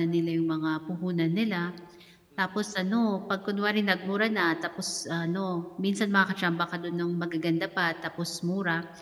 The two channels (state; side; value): identical; both; correlation 1.00